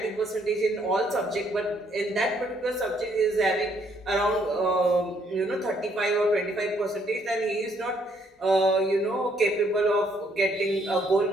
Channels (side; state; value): both; normal; correlation 0.69